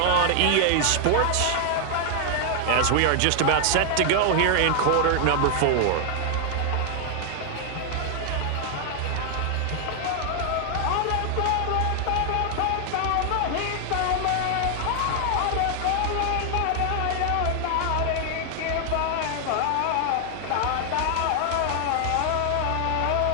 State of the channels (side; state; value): both; different; correlation 0.00